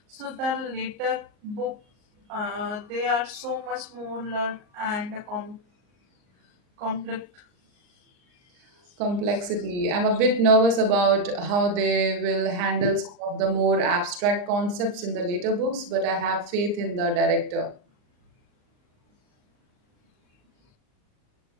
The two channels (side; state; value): left; late; 39 ms